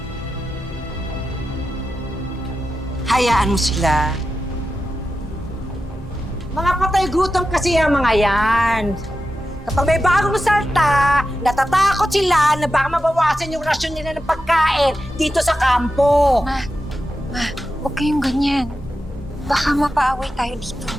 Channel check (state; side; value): normal; both; correlation 0.91